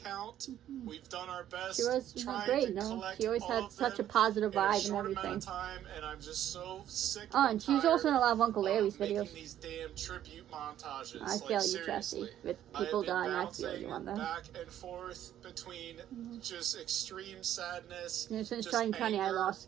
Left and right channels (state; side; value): quieter; left; 11.5 dB